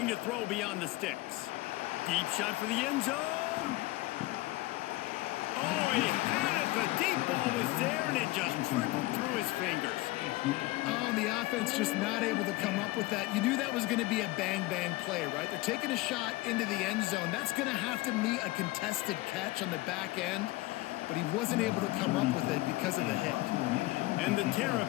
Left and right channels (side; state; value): right; quieter; 19.8 dB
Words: to throw beyond the sticks. Deep shot for the end zone. Oh, he had it. The deep ball was there, and it just trickled through his fingers. Oh, the offense just not able to come up with that. You knew that was going to be a bang-bang play, right? They're taking a shot into the end zone. That's going to have to meet a contested catch on the back end. But he wasn't able to come up with it because of the hit. And the